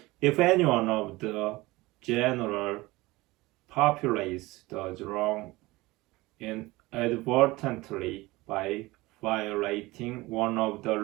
If anyone of the general populace does wrong inadvertently by violating one of the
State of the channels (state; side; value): quieter; left; 20.8 dB